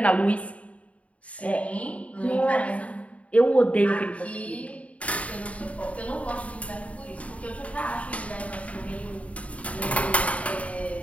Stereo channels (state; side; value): late; right; 0.066 ms